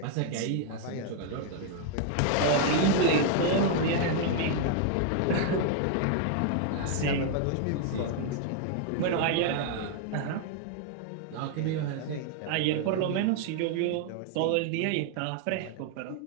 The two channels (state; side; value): different; both; correlation 0.00